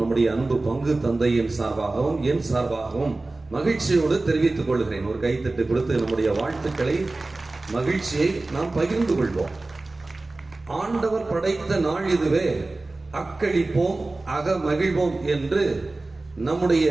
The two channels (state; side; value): quieter; left; 3.1 dB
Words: அன்பு பங்கு தந்தையின் சார்பாகவும் என் சார்பாகவும் மகிழ்ச்சியோடு தெரிவித்துக் கொள்கிறேன். ஒரு கைத்தட்டு கொடுத்து நம்முடைய வாழ்த்துக்களை, மகிழ்ச்சியை நாம் பகிர்ந்து கொள்வோம். ஆண்டவர் படைத்த நாள் இதுவே, அக்களிப்போம் அக மகிழ்வோம் என்று நம்முடைய